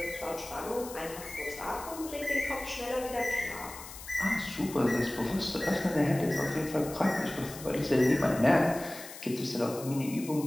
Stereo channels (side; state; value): left; noise; hiss, 13 dB below the sound